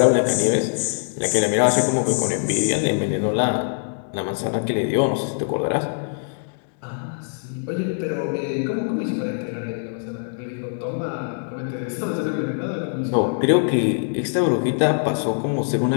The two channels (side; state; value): right; silent; digital silence